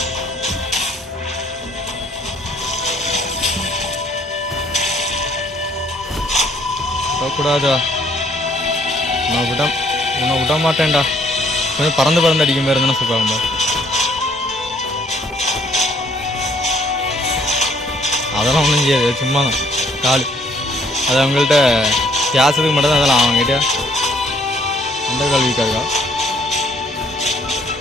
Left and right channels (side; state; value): both; normal; correlation 0.64